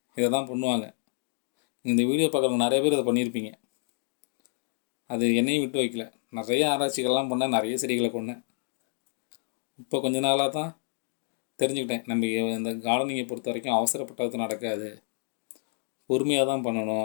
இதை தான் பண்ணுவாங்க. இந்த வீடியோ பார்க்குறவங்க நிறைய பேர் இதை பண்ணியிருப்பீங்க. அது என்னையும் விட்டு வைக்கல. நிறைய ஆராய்ச்சிகள்லாம் பண்ணேன், நிறைய செடிகளை கொண்டேன். இப்போ கொஞ்ச நாளாக தான் தெரிஞ்சுக்கிட்டேன், நம்ம இந்த கார்டனிங்கை பொறுத்த வரைக்கும் அவசரப்பட்டது நடக்காது, பொறுமையாக தான்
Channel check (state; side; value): silent; right; 59 dB below the other